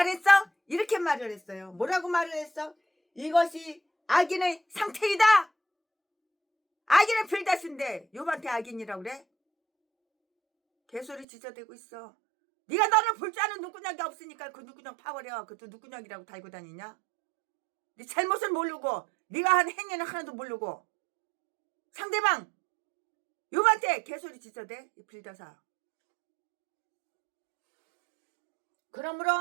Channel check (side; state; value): left; drops out; at 11.2 s